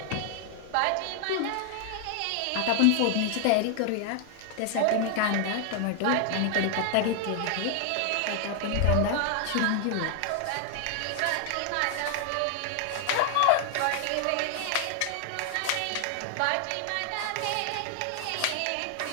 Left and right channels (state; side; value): different; both; correlation 0.00